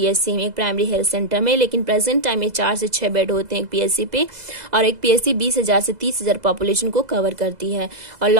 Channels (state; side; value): late; left; 2.0 ms